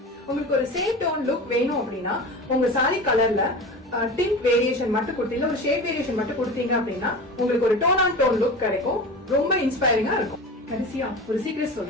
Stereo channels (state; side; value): normal; both; correlation 0.32